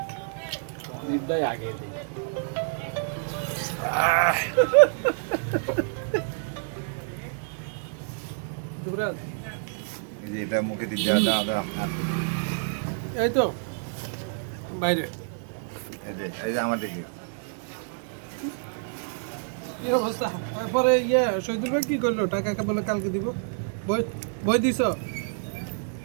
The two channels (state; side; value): silent; left; digital silence